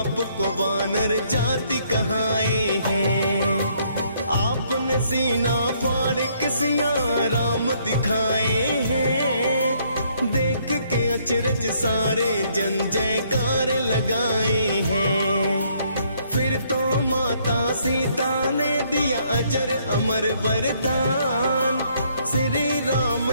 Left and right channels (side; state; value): both; inverted; correlation -0.68